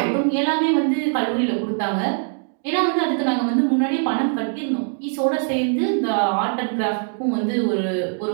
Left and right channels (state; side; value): silent; left; 64 dB below the other